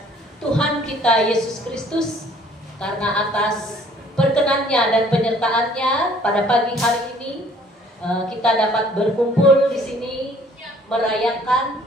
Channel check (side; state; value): both; normal; correlation 0.57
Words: Tuhan kita Yesus Kristus karena atas perkenannya dan penyertaannya pada pagi hari ini kita dapat berkumpul di sini merayakan